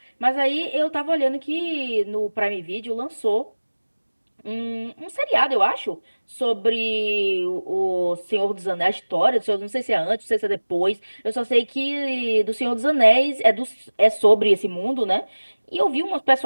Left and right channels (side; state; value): both; inverted; correlation -1.00